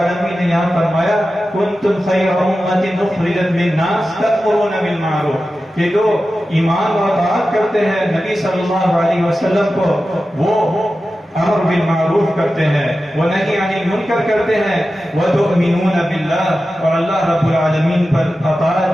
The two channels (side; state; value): both; normal; correlation 0.93